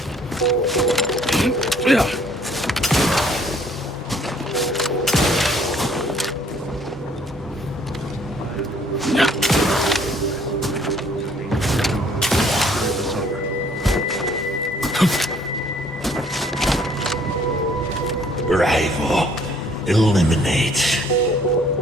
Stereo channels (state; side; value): normal; both; correlation 0.61